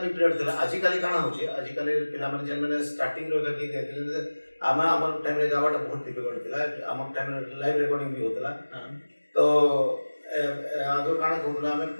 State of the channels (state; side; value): inverted; both; correlation -1.00